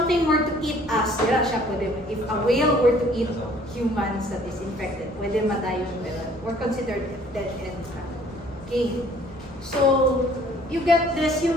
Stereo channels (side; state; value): both; normal; correlation 0.56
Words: were to eat us, dira siya pwede. If a whale were to eat humans that is infected, pwede madayon, pero we're considered dead end. Okay. So, you get this,